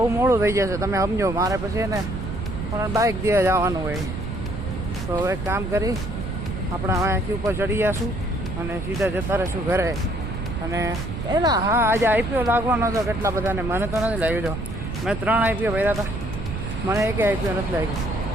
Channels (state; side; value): noise; right; rumble, 6 dB below the sound